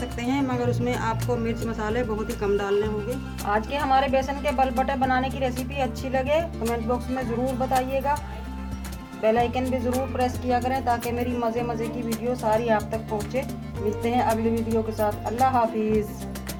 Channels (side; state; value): both; identical; correlation 1.00